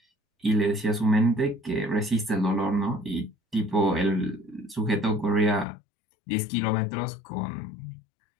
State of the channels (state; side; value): drops out; right; at 5.7 s